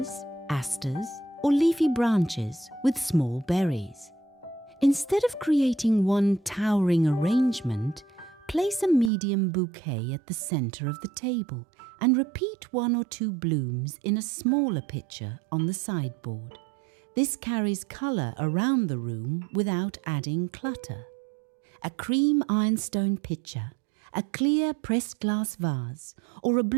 asters, or leafy branches with small berries. Instead of creating one towering arrangement, place a medium bouquet at the center of the table and repeat 1 or 2 blooms in a smaller pitcher on the sideboard. This carries color around the room without adding clutter. A cream ironstone pitcher, a clear pressed glass vase, or a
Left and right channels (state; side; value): drops out; left; at 9.1 s